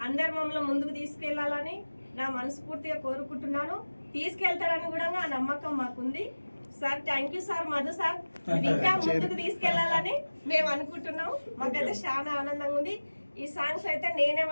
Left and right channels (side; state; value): both; inverted; correlation -1.00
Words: అందరు మమ్మల్ని ముందుకు తీసుకెళ్లాలని నా మనస్ఫూర్తిగా కోరుకుంటున్నాను. తీసుకెళ్తారని కూడా ఆ నమ్మకం మాకుంది sir. Thank you sir, Madhu sir, ఇంకా ముందుకు తీసుకెళ్లాలని మేము అనుకుంటున్నాం. మాకైతే చాలా ఆనందంగా ఉంది. ఈ సాంగ్స్ అయితే నేనే